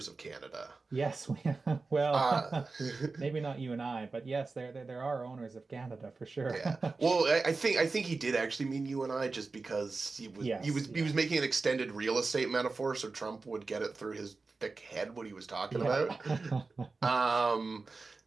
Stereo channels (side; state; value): left; quieter; 3.9 dB